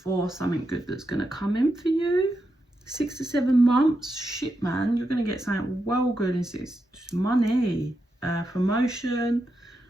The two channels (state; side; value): normal; both; correlation 0.85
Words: something good that's going to come in for you. 6 to 7 months. Shit, man. You're going to get something well good in 6. Money, promotion,